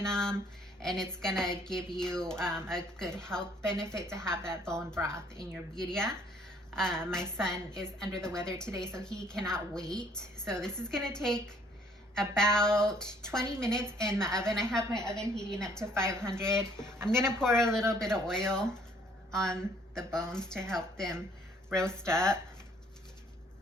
them, and it's gonna give you a good health benefit to have that bone broth in your birria. My son is under the weather today, so he cannot wait. So this is gonna take about 20 minutes in the oven. I have my oven heating up to 500. I'm gonna pour a little bit of oil on the bones to help them roast up.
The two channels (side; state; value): both; normal; correlation 0.62